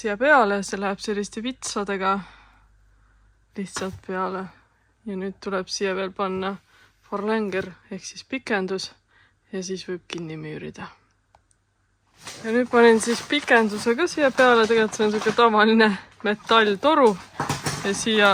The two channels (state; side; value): identical; both; correlation 1.00